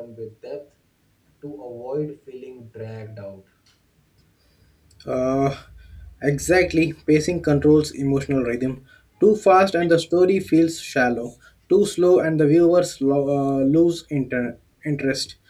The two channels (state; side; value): identical; both; correlation 1.00